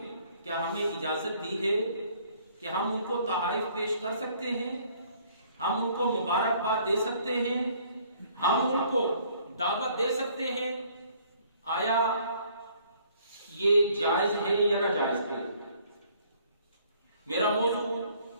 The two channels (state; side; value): inverted; both; correlation -0.60